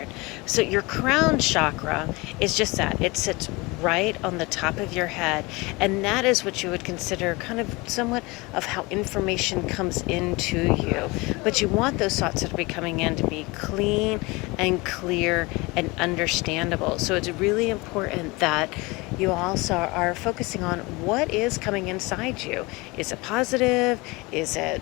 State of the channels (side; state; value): right; quieter; 24.5 dB